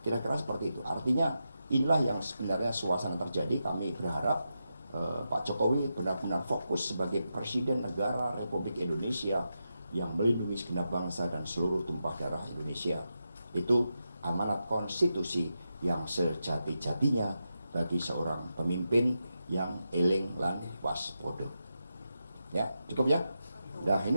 Kira-kira seperti itu. Artinya inilah yang sebenarnya suasana terjadi. Kami berharap Pak Jokowi benar-benar fokus sebagai Presiden Negara Republik Indonesia yang melindungi segenap bangsa dan seluruh tumpah darah Indonesia. Itu amanat konstitusi yang sejati-jatinya bagi seorang pemimpin yang eling lan waspada. Ya, cukup ya? Nah,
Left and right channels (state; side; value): inverted; both; correlation -0.88